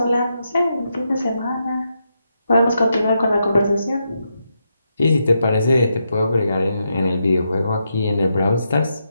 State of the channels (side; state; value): both; inverted; correlation -0.83